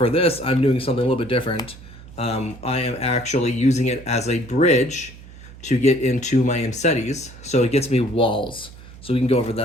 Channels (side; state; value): right; noise; hum, 18 dB below the sound